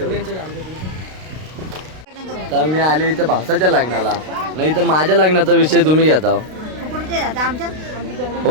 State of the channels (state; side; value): late; left; 32 ms